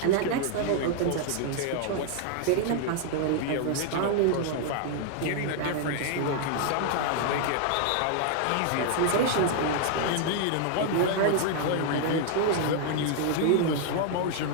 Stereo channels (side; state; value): both; different; correlation 0.00